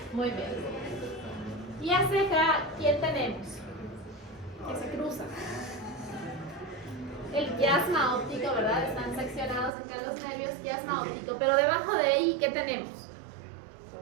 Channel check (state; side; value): drops out; left; at 9.7 s